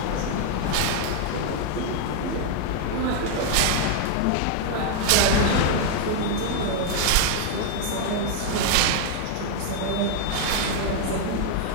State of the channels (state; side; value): different; both; correlation 0.00